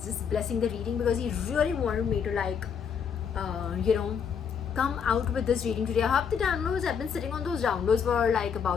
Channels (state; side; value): quieter; right; 7.0 dB